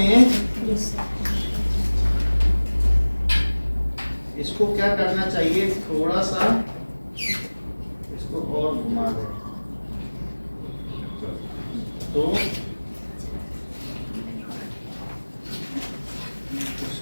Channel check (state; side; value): inverted; both; correlation -1.00